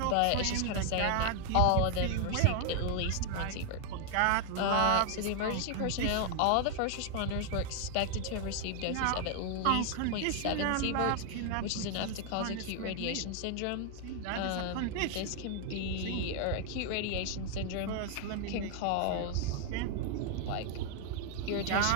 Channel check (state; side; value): different; both; correlation 0.00